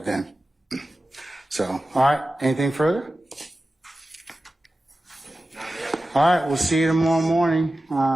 then. So, all right, anything further? All right, we'll see you tomorrow morning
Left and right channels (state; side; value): normal; both; correlation 0.94